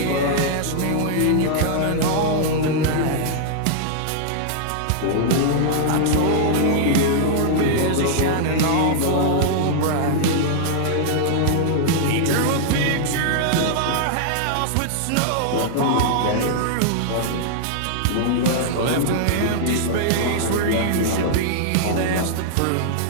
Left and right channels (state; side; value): different; both; correlation -0.01